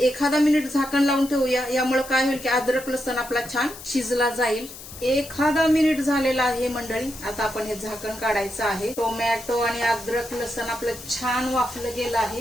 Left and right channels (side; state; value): left; noise; hiss, 14 dB below the sound